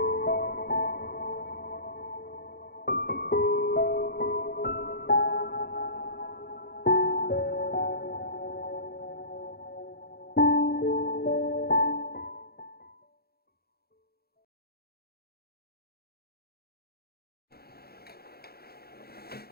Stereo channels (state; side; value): late; right; 0.46 ms